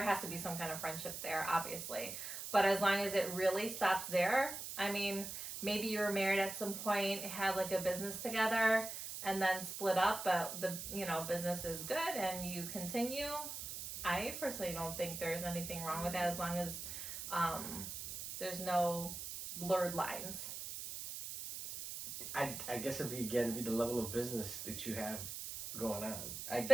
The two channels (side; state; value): right; noise; hiss, 7 dB below the sound